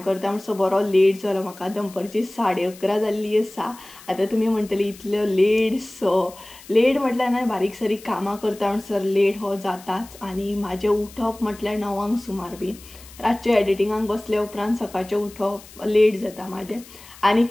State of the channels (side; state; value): left; noise; hiss, 20 dB below the sound